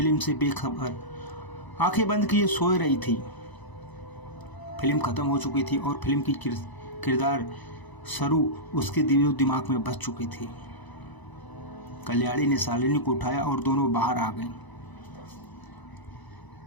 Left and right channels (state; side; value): late; right; 1.0 ms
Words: से बेखबर आंखें बंद किए सोए रही थी। फिल्म खत्म हो चुकी थी और फिल्म की किरदार सरू उसके दिमाग में बस चुकी थी। कल्याणी ने शालिनी को उठाया और दोनों बाहर आ गए।